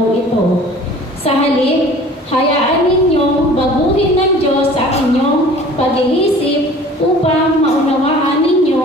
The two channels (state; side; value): normal; both; correlation 0.47